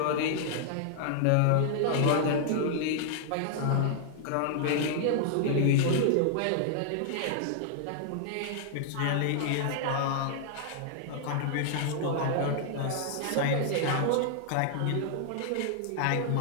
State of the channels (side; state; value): both; different; correlation -0.01